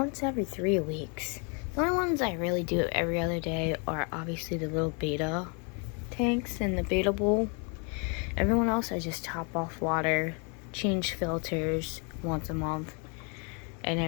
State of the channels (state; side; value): quieter; right; 35.8 dB